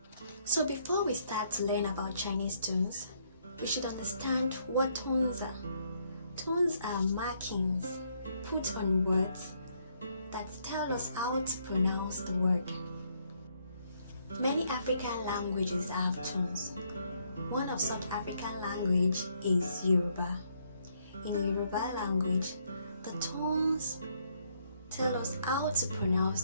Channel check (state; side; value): inverted; both; correlation -0.71